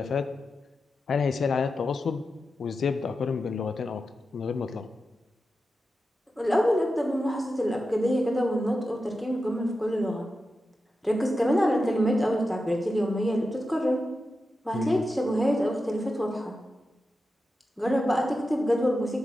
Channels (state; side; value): normal; both; correlation 0.90